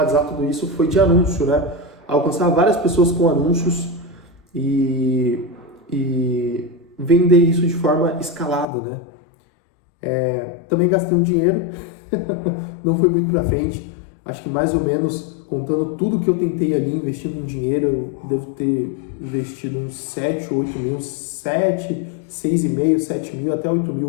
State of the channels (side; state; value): right; drops out; at 8.7 s